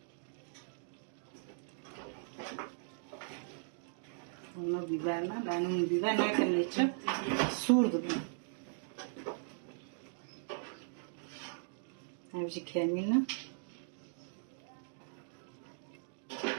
Onu biberle, ben onu biber ne kadar içip surdum. Avcı kemine.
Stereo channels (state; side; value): silent; left; digital silence